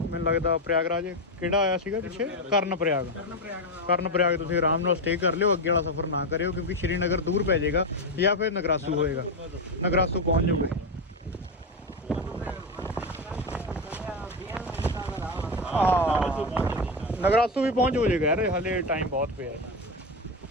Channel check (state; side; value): normal; both; correlation 0.11